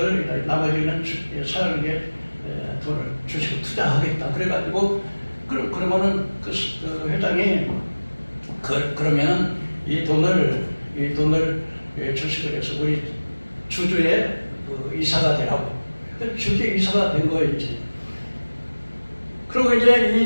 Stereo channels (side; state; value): both; inverted; correlation -1.00